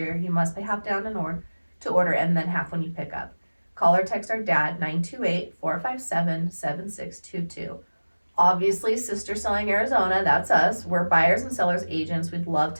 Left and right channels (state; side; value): inverted; both; correlation -1.00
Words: You must pay half down in order to order, and then half when you pick up. Call or text our dad, 928-457-7622. Obviously, Sister Selling Arizona, that's us. We're buyers and sellers agents. We'd love